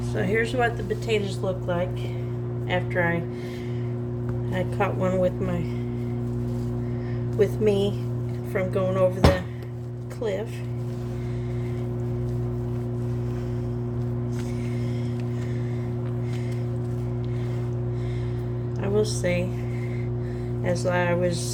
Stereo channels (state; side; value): identical; both; correlation 1.00